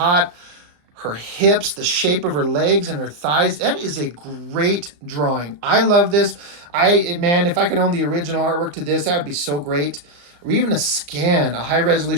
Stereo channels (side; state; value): left; late; 34 ms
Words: Her hips, the shape of her legs and her thighs, that is a great drawing. I love this. Man, if I could own the original artwork to this, that would be so great. Or even a scan, a high